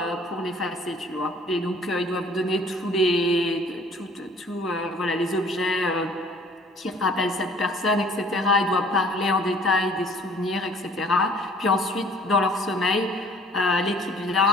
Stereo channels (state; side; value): normal; both; correlation 0.54